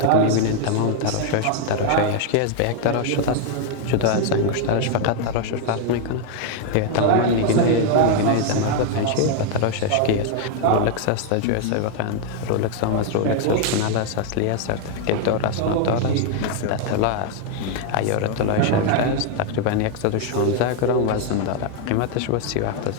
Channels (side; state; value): both; different; correlation 0.00